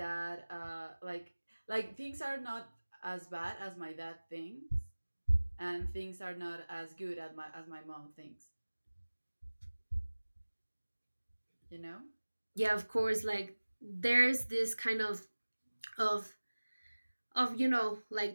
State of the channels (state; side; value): inverted; both; correlation -1.00